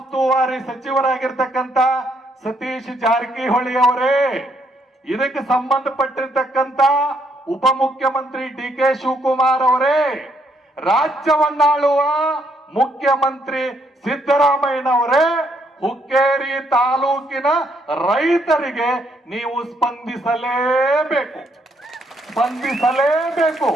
ಸಚಿವರಾಗಿರ್ತಕ್ಕಂಥ ಸತೀಶ್ ಜಾರಕಿಹೊಳಿ ಅವರೇ, ಇದಕ್ಕೆ ಸಂಬಂಧಪಟ್ಟಿರ್ತಕ್ಕಂಥ ಉಪಮುಖ್ಯಮಂತ್ರಿ DK ಶಿವಕುಮಾರ್ ಅವರೇ, ರಾಜ್ಯವನ್ನಾಳುವ ಮುಖ್ಯಮಂತ್ರಿ ಸಿದ್ದರಾಮಯ್ಯನವರೇ, ಹುಕ್ಕೇರಿ ತಾಲೂಕಿನ ರೈತರಿಗೆ ನೀವು ಸ್ಪಂದಿಸಲೇಬೇಕು.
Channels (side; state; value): both; normal; correlation 0.72